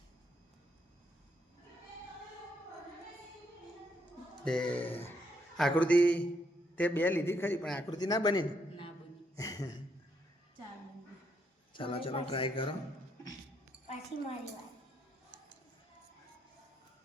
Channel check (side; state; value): both; normal; correlation 0.75